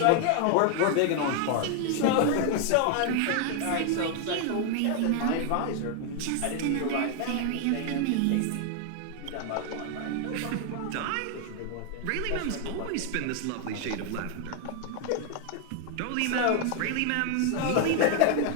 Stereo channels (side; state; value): both; different; correlation 0.01